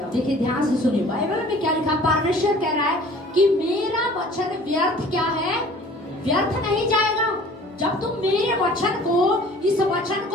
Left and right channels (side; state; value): both; normal; correlation 0.49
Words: देखिए ध्यान से सुनिए, बाइबल में क्या लिखा, परमेश्वर कह रहा है कि मेरा वचन व्यर्थ क्या है, व्यर्थ नहीं जाएगा। जब तुम मेरे वचन को, इस वचन